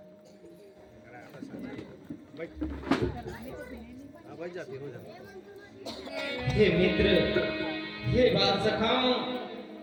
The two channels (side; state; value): both; identical; correlation 1.00